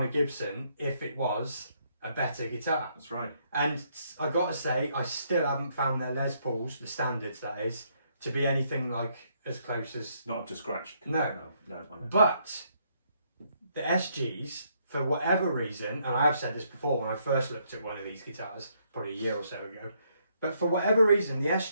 a Gibson if it was a better guitar? That's right. And I gotta say, I still haven't found their Les Pauls, the standards that is, to be anything like as close as. Not up to scratch. No. I know. But the SGs, for whatever reason, and I have said this before when I first looked at one of these guitars, probably a year or so ago, but for whatever reason, the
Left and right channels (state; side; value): inverted; both; correlation -0.72